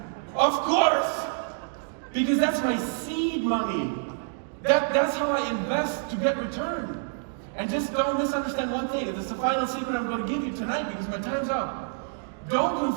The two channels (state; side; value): silent; left; digital silence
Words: of course. Because that's my seed money. That's how I invest to get return. And just don't misunderstand one thing. This is the final secret I'm going to give you tonight because my time's up. Don't